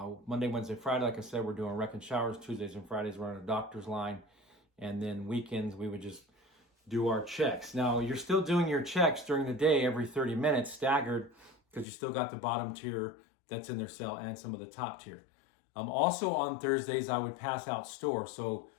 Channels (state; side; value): drops out; right; at 11.9 s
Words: Friday, like I said, we're doing rec and showers. Tuesdays and Fridays, we're on a doctor's line. And then weekends, we would just do our checks. Now, you're still doing your checks during the day every 30 minutes, staggered, because you still got the bottom tier that's in their cell and some of the top tier. Also on Thursdays, I would pass out store. So